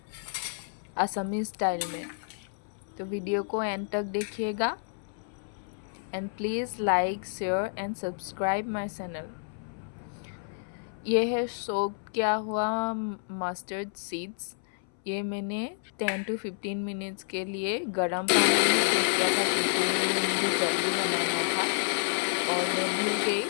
असमी स्टाइल में। तो वीडियो को एंड तक देखिएगा and please like share and subscribe my channel. ये है सोक किया हुआ मस्टर्ड सीड्स। ये मैंने 10 to 15 मिनट्स के लिए गर्म पानी में सोक किया था क्योंकि मुझे जल्दी बनाना था और मैं भूल गई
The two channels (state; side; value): silent; right; 58 dB below the other